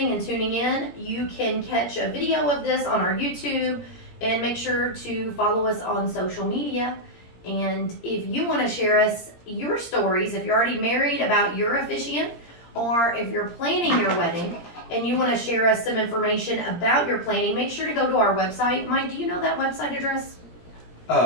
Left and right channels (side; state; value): right; late; 17 ms